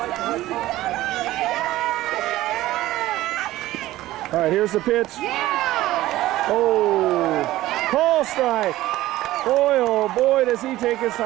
All right, here's the pitch. Oh, call strike. Boy, oh boy, does he take his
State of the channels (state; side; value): quieter; left; 16.0 dB